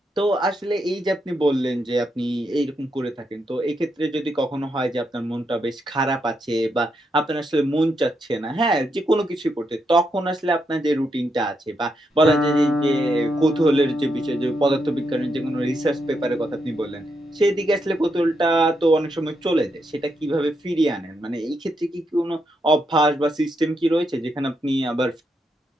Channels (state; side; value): normal; both; correlation 0.81